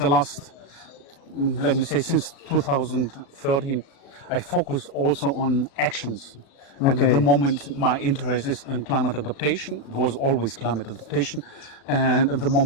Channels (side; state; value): right; late; 36 ms